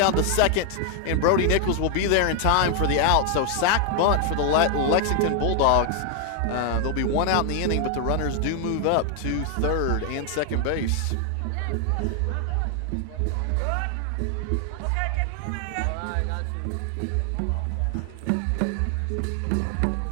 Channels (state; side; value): different; both; correlation 0.00